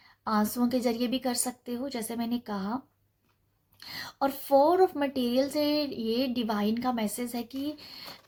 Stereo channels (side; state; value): both; identical; correlation 1.00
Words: आंसुओं के जरिए भी कर सकते हो जैसे मैंने कहा। और 4 ऑफ मटेरियल से ये डिवाइन का मैसेज है कि